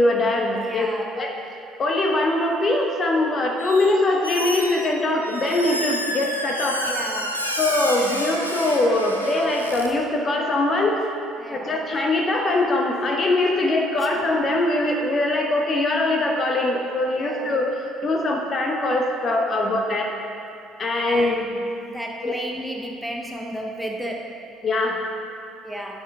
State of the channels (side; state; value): both; normal; correlation 0.65